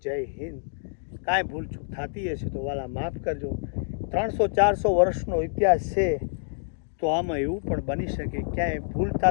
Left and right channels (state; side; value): silent; right; digital silence